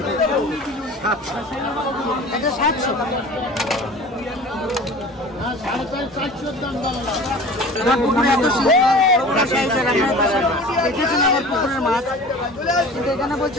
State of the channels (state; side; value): normal; both; correlation 0.40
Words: এটা 700। পুকুরে এত দেখেছেন আমার পুকুরের মাছ, কিন্তু এখানে বলছে